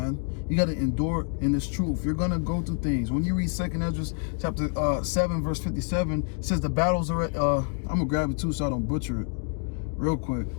You got to endure in this truth. You're going to go through things. When you read 2nd Esdras, chapter 7, verse 57, it says the battles are, I'm going to grab it too so I don't butcher it real quick.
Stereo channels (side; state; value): right; quieter; 38.6 dB